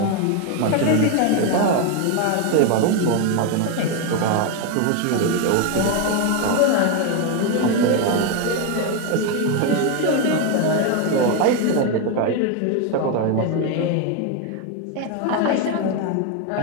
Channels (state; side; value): different; both; correlation 0.01